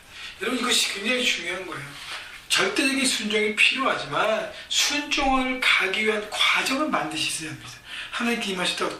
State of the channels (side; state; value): both; identical; correlation 1.00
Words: 여러분, 이것이 굉장히 중요한 거예요. 절대적인 순종이 필요하지만 순종을 가기 위한 과정을 반드시 있어야 합니다. 하나님께